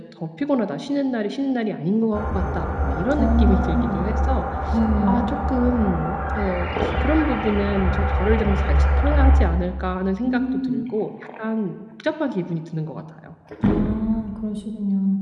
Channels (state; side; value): identical; both; correlation 1.00